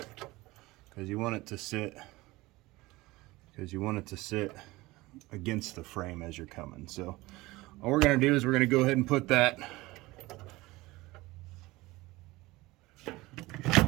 Because you want it to sit against the frame as you're coming. So all we're going to do is we're going to go ahead and put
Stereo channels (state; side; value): quieter; left; 20.2 dB